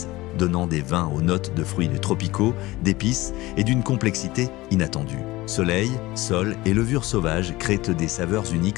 donnant des vins aux notes de fruits tropicaux, d'épices et d'une complexité inattendue. Soleil, sol et levure sauvage créent des saveurs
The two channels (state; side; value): quieter; right; 19.3 dB